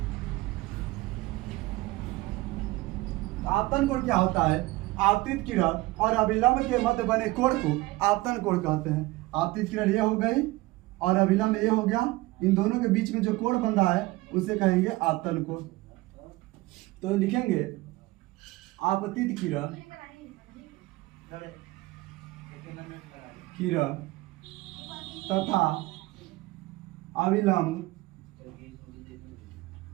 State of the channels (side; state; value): left; quieter; 20.4 dB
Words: आपतन कोण क्या होता है? आपतित किरण और अभिलंब के मध्य बने कोण को आपतन कोण कहते हैं। आपतित किरण ये हो गई और अभिलंब ये हो गया, इन दोनों के बीच में जो कोण बन रहा है उसे कहेंगे आपतन कोण। तो लिखेंगे आपतित किरण तथा अभिलंब